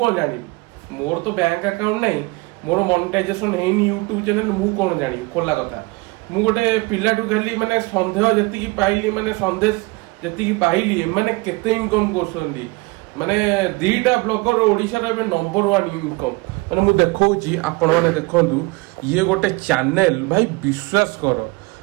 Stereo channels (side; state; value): left; quieter; 24.6 dB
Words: जानी मोर तो बैंक अकाउंट नै मोर मोनेटाइजेशन हेनी यूट्यूब चैनल मु कोन जानी खोला कथा मु गोटे पिलाटू खाली माने संदेह जति की पाइली माने संदेश जति की पाइली माने केते इनकम करछनी माने दीटा ब्लॉगर ओडिशा रे नंबर 1 इनकम माने मु देखौची आपण माने देखंतु ये गोटे चैनल भाई विश्वास कर